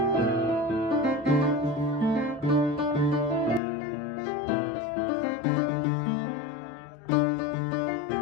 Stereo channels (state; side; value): drops out; right; at 3.6 s